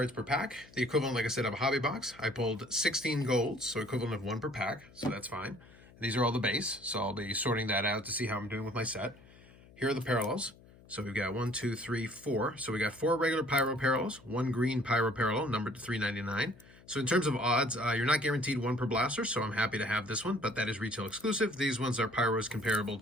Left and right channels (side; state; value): left; noise; hum, 24 dB below the sound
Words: per pack. The equivalent, like I said, of a hobby box. I pulled 16 golds, so equivalent of 1 per pack, so that's fine. These are all the base, so I'll be sorting that out to see how I'm doing with my set. Here are the parallels. So we've got 1, 2, 3, 4. So we got 4 regular Pyro parallels, 1 green Pyro parallel, numbered to 399. So in terms of odds, you're not guaranteed 1 per blaster, so I'm happy to have this one, but that is retail exclusive. These ones are Pyros comparable